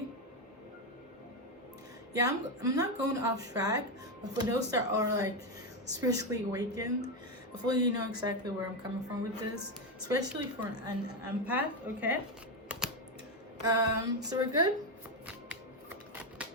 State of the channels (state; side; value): normal; both; correlation 0.09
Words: Yeah, I'm not going off track, but for those that are like spiritually awakened, Hopefully you know exactly where I'm coming from with this, especially for an empath. Okay, so we're good.